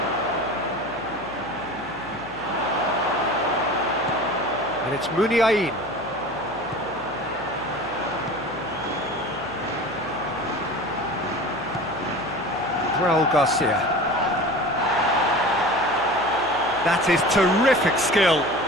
And it's Muniain. Raul Garcia. That is terrific skill.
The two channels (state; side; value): noise; left; hum, 19 dB below the sound